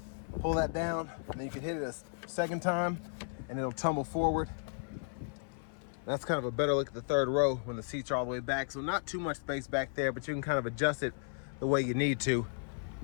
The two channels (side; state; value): right; silent; 55 dB below the other